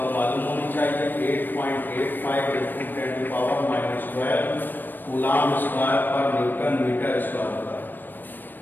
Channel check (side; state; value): right; late; 0.092 ms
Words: मालूम होनी चाहिए 8.85 into 10 to power -12 coulomb square पर न्यूटन मीटर स्क्वायर होता है।